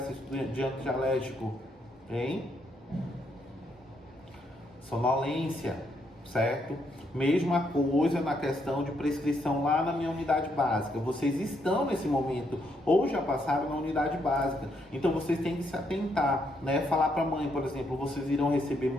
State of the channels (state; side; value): normal; both; correlation 0.75